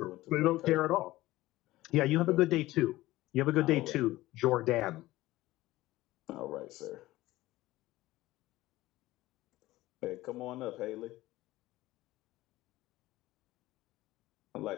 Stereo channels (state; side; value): quieter; right; 17.3 dB